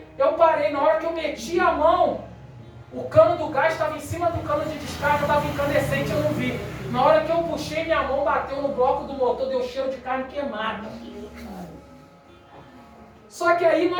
eu parei, na hora que eu meti a mão, o cano do gás estava em cima do cano de descarga, estava incandescente, eu não vi. Na hora que eu puxei, minha mão bateu no bloco do motor, deu cheiro de carne queimada. Só que aí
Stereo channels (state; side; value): identical; both; correlation 1.00